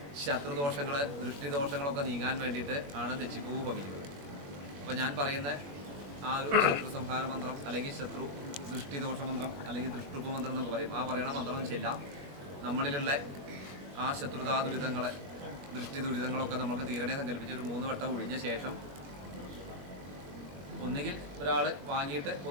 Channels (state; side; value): late; left; 21 ms